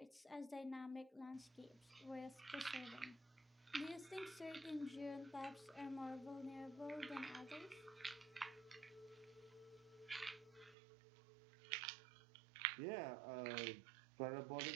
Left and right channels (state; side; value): drops out; left; at 10.8 s